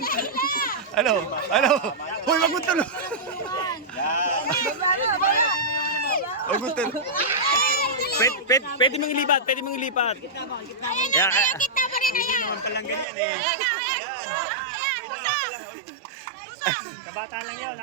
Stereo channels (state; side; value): drops out; left; at 13.1 s